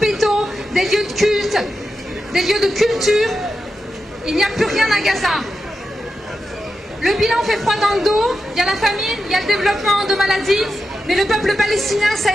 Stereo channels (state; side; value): normal; both; correlation 0.89